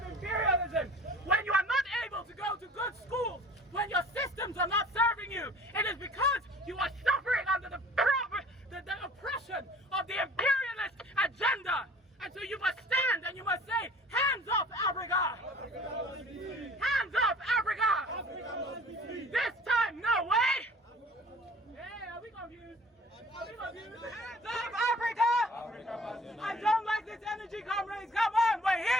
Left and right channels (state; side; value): normal; both; correlation 0.49